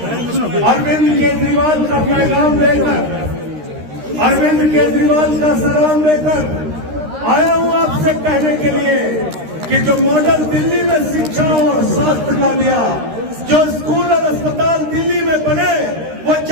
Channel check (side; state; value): left; late; 13 ms